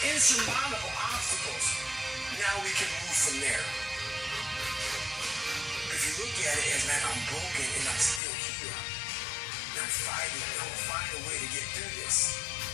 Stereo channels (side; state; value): right; drops out; at 8.2 s